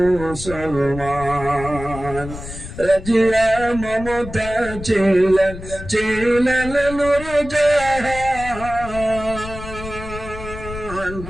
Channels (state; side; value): noise; left; rumble, 11 dB below the sound